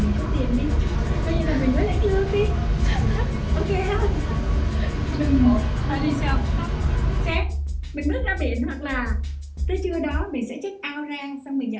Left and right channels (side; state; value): both; identical; correlation 1.00